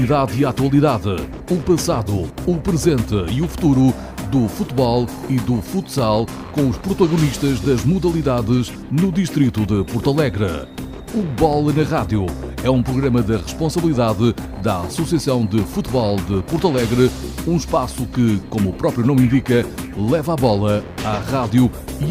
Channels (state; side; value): identical; both; correlation 1.00